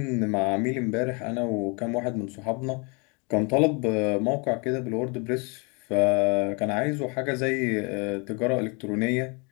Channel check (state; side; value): quieter; right; 31.6 dB